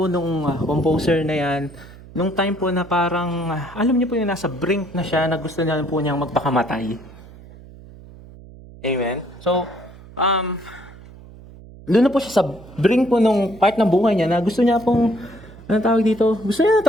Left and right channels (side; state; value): right; noise; hum, 19 dB below the sound